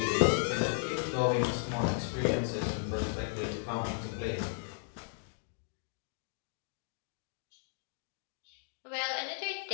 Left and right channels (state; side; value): silent; right; digital silence